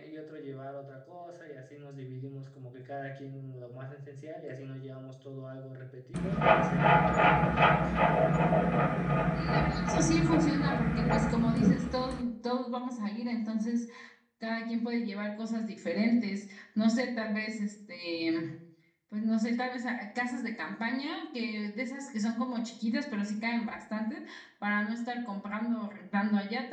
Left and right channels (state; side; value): identical; both; correlation 1.00